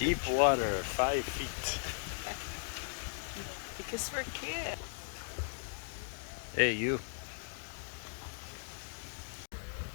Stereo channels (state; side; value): silent; right; digital silence